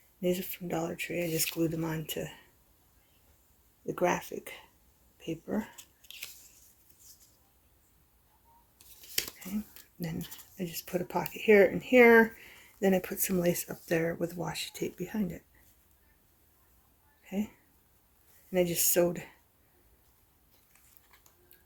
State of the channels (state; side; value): identical; both; correlation 1.00